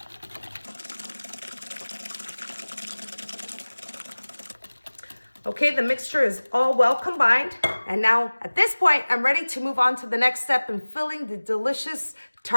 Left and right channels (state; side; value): inverted; both; correlation -1.00